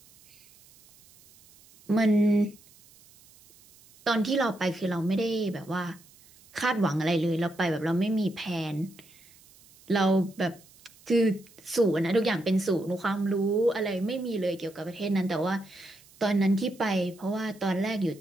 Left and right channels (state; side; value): noise; right; hiss, 26 dB below the sound